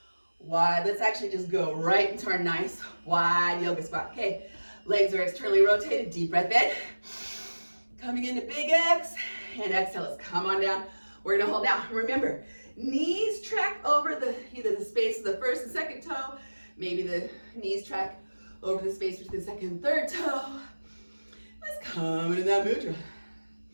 wide. Let's actually just go right into our nice, wide yoga spot. Okay, legs are externally rotated, deep breath in. Coming into big X, and exhale, let's come on down. We're gonna hold down. Remember, knees track over either the space of the first and second toe, maybe the knees track over the space between the second and third toe. Let's come into that mudra.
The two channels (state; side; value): inverted; both; correlation -1.00